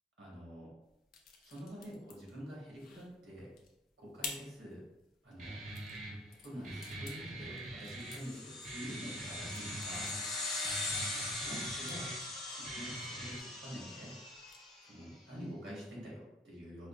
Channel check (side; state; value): both; normal; correlation 0.50